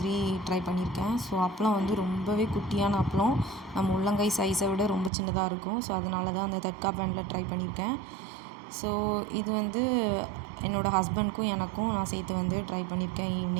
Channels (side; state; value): left; drops out; at 5.1 s